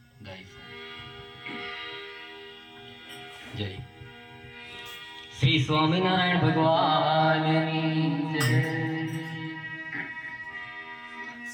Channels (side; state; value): both; identical; correlation 1.00